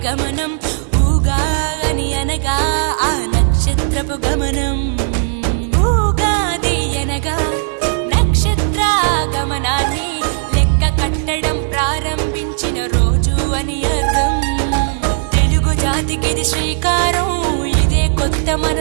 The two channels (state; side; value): silent; left; digital silence